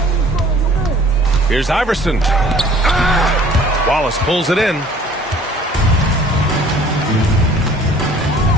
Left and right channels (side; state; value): both; normal; correlation 0.52